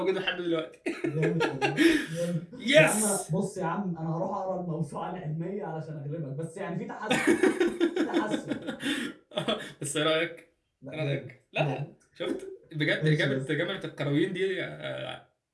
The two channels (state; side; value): identical; both; correlation 1.00